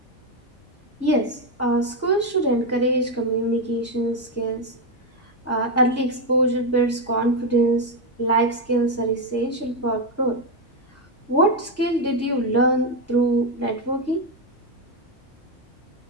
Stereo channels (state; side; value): normal; both; correlation 0.07